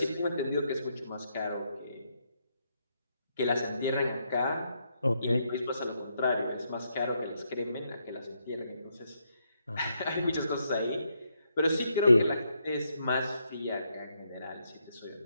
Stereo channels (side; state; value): both; inverted; correlation -0.78